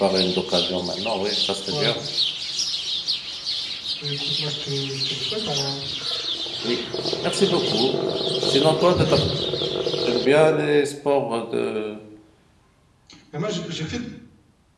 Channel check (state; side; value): identical; both; correlation 1.00